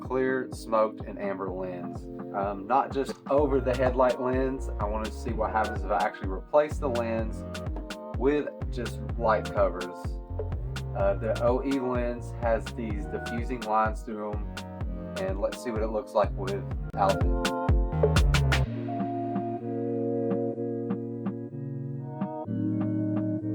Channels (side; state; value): both; identical; correlation 1.00